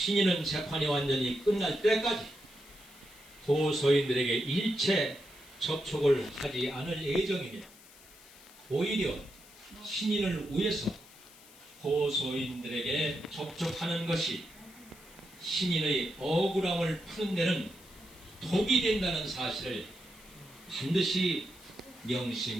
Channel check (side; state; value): left; noise; hiss, 22 dB below the sound